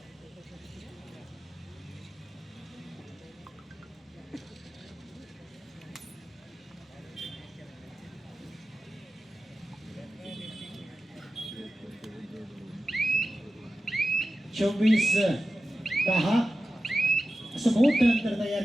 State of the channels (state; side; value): normal; both; correlation 0.94